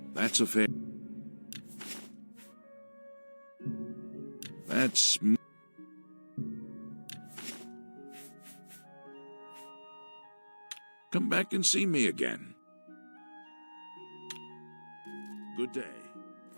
That's a fair. That's. Come back and see me again. Good day.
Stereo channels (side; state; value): both; inverted; correlation -1.00